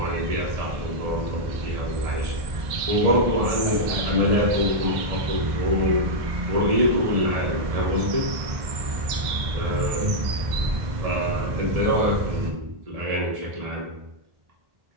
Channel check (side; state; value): left; late; 2.0 ms